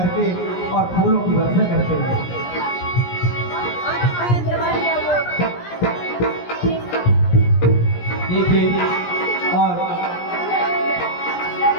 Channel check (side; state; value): right; late; 17 ms